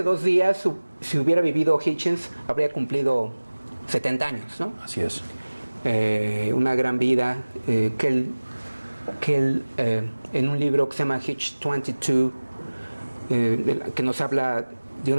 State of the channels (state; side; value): inverted; both; correlation -1.00